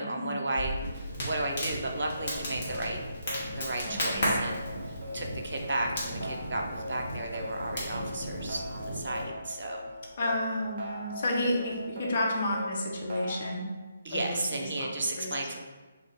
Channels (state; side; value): inverted; both; correlation -0.77